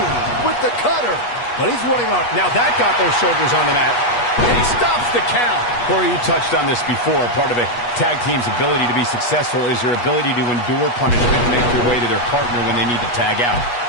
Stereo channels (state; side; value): late; right; 8.3 ms